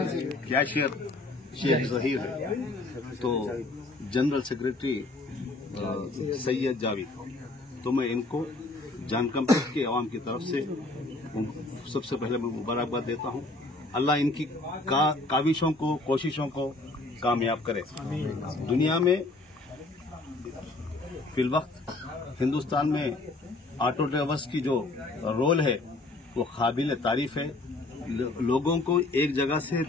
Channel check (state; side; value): quieter; right; 3.0 dB